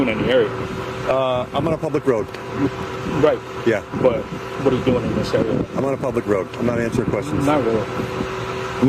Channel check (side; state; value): both; identical; correlation 1.00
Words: in the area. I'm on a public road. Right. Yeah. But what are you doing in this area? I'm on a public road. I'm not answering questions. Not really.